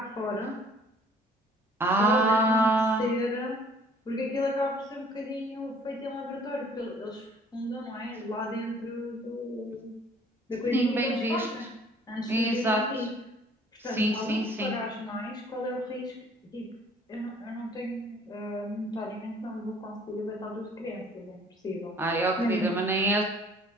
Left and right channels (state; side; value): normal; both; correlation 0.56